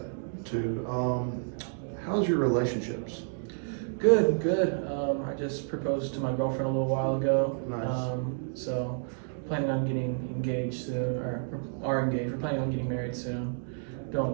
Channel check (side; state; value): left; silent; digital silence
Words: too. How's your relationships? Good, good. I just proposed to my girlfriend a little while ago. Nice. So planning on getting engaged soon, or are engaged. We're planning on getting married soon.